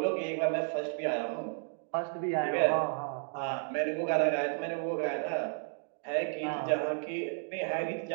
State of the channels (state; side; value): silent; left; 56 dB below the other